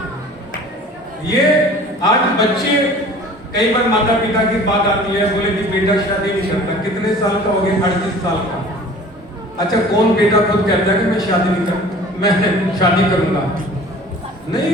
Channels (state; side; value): normal; both; correlation 0.45